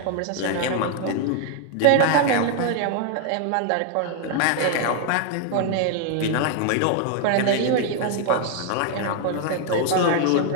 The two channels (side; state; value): both; different; correlation 0.00